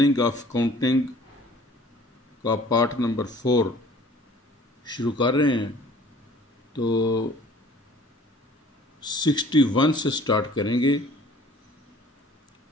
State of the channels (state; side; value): normal; both; correlation 0.52